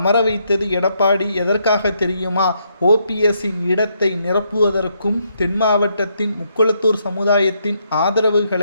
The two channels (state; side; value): inverted; both; correlation -0.76